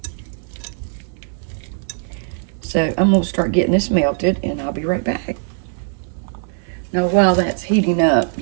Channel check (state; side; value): silent; left; digital silence